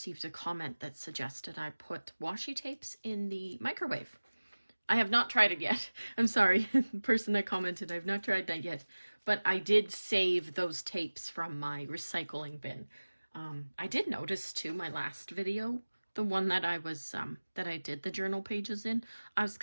a comment that suggested I put washi tapes in the microwave. I have not tried it yet. I'm sorry, the person that commented, I've not tried that yet. But I did save those tapes from my recycling bin. I did notice too, my last video, the one that I was, that I did the journal pages in, I was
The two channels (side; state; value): both; inverted; correlation -1.00